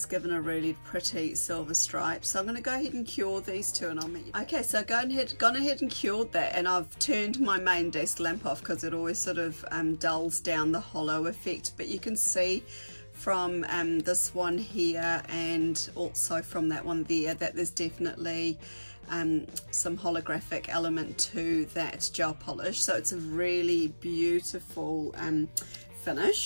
given a really pretty silver stripe. So I'm going to go ahead and cure these 2 and I'll meet you. Okay, so gone ahead and cured that, and I've turned my main desk lamp off because it always sort of dulls down the hollow effect. But you can see from this one here and also from that one there that there's definitely some holographic element to that gel polish. So it's a really beautiful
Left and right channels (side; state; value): both; inverted; correlation -1.00